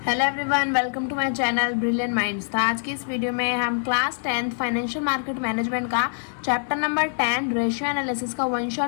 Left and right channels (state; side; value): silent; right; 59 dB below the other